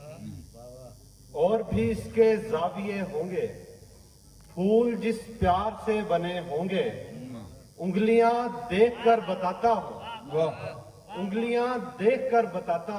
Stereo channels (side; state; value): both; identical; correlation 1.00